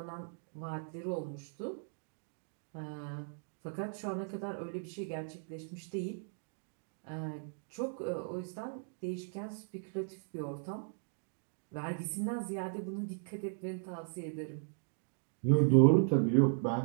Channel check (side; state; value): left; silent; digital silence